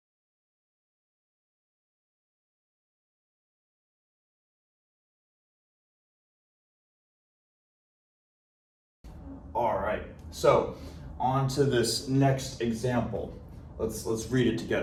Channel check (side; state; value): both; identical; correlation 1.00